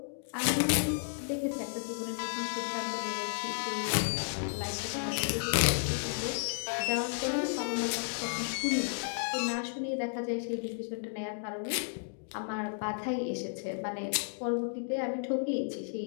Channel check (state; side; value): silent; right; digital silence